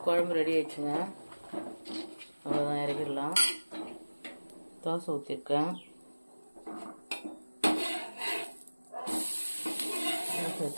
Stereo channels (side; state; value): both; inverted; correlation -1.00